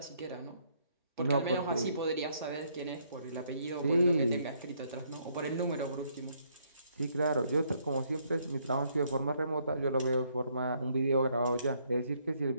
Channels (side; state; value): both; inverted; correlation -0.70